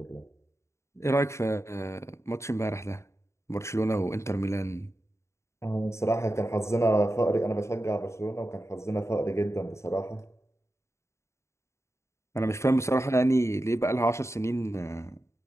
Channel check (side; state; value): right; late; 0.14 ms